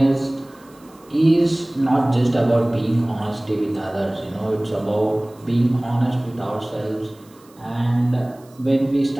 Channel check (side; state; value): right; noise; hiss, 29 dB below the sound